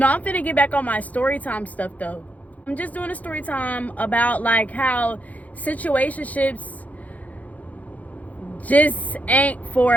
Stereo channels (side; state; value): right; late; 0.074 ms